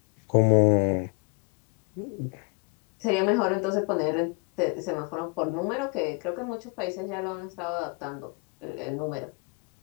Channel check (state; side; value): quieter; right; 33.3 dB